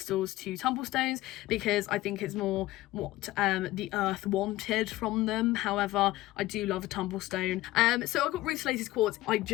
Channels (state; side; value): quieter; right; 17.1 dB